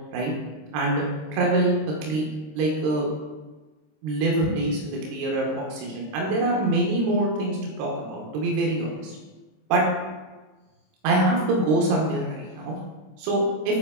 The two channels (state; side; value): late; left; 26 ms